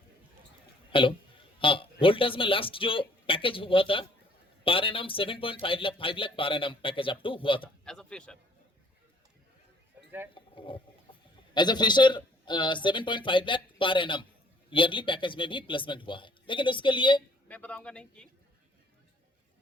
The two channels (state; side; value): normal; both; correlation 0.60